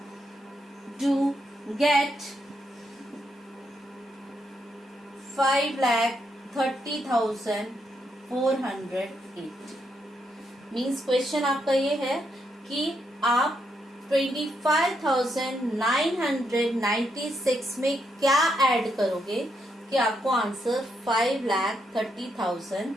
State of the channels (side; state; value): both; normal; correlation 0.79